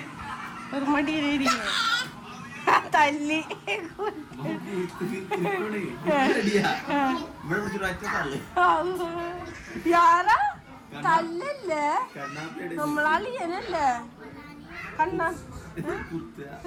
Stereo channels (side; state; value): both; identical; correlation 1.00